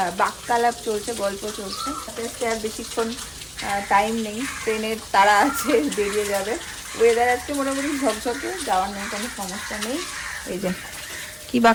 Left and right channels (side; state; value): both; identical; correlation 1.00